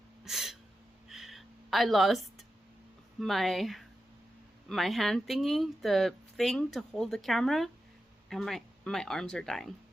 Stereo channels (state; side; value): normal; both; correlation 0.90